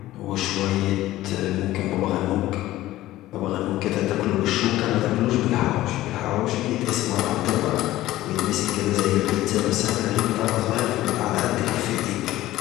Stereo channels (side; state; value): right; quieter; 15.7 dB